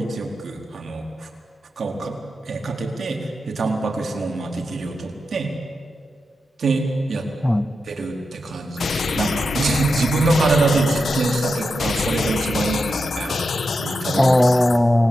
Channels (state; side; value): normal; both; correlation 0.88